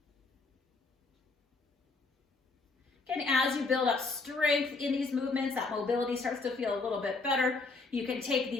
Again, as you build up strength in these movements, that mobility starts to feel a little bit better. You can take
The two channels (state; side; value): quieter; right; 3.8 dB